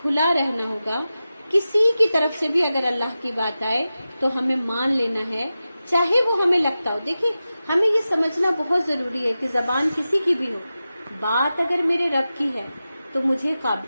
کھلا رہنا ہوگا. کسی کی طرف سے بھی اگر اللہ کی بات آئے تو ہمیں مان لینا ہے، چاہے وہ ہمیں لگتا ہو. دیکھیں، ہمیں یہ سمجھنا بہت ضروری ہے کہ زبان کسی کی بھی ہو، بات اگر میرے رب کی ہے تو مجھے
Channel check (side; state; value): both; inverted; correlation -0.93